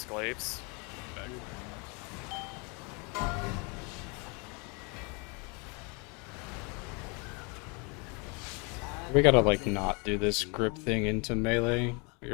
glaives. We gotta like not do this grip thing into melee.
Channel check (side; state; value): right; quieter; 32.0 dB